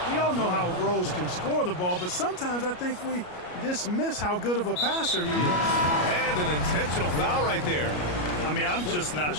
We all know how Rose can score the ball, but sometimes I think we dismiss how good of a passer he is. And an intentional foul right there. I mean, I'm just not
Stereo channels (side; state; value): right; late; 33 ms